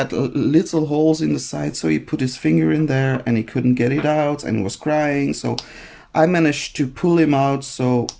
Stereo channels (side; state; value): both; identical; correlation 1.00